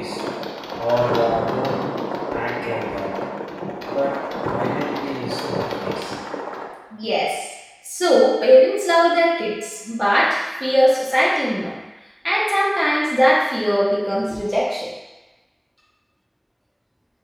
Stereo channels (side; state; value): both; identical; correlation 1.00